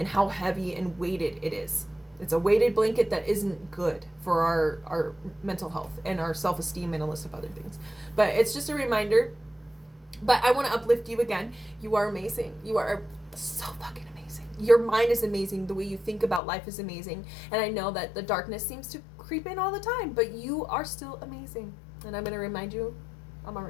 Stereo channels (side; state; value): right; drops out; at 16.4 s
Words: how heavy and weighted it is. It's a weighted blanket that isn't good for our mental health and our self-esteem and a list of other things. But it's just a reminder. But I want to uplift you again. You are amazing. You are so fucking amazing. Your mind is amazing. The way you think about life is amazing. And I know that the darkness seems to creep in all the time, but you are still amazing. And I'm going to remind you. I'm going